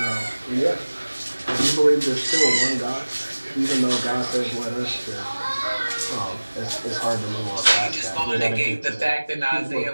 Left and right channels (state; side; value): inverted; both; correlation -1.00